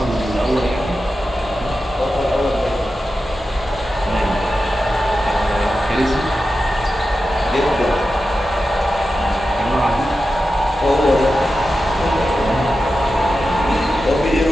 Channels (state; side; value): normal; both; correlation 0.92